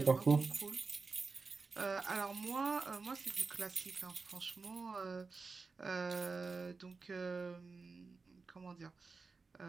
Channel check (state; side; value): quieter; left; 4.3 dB